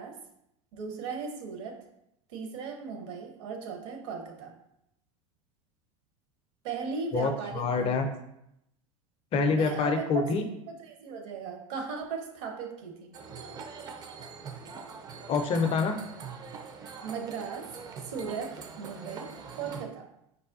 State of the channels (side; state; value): both; normal; correlation 0.36